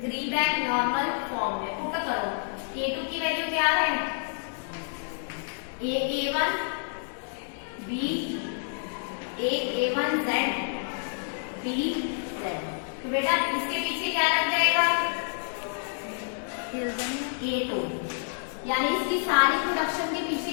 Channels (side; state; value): right; silent; digital silence